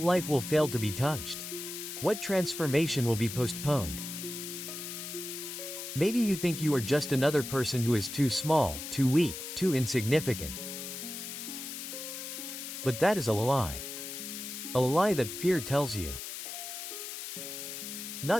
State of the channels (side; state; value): left; noise; hiss, 8 dB below the sound